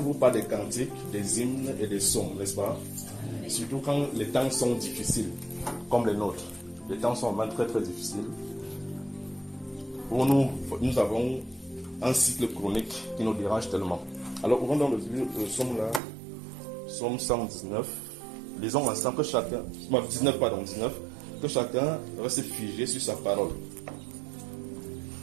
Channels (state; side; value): drops out; left; at 16.0 s